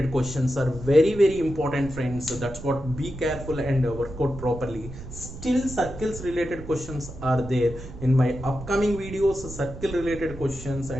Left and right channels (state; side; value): noise; right; rumble, 12 dB below the sound